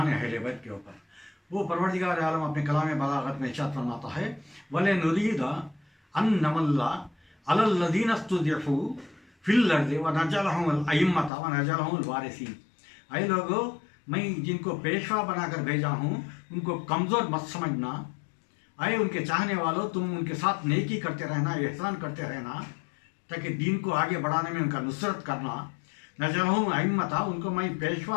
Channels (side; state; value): right; drops out; at 11.3 s